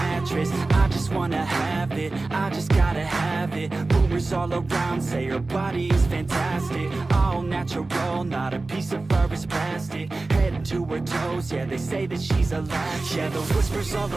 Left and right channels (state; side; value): quieter; left; 3.3 dB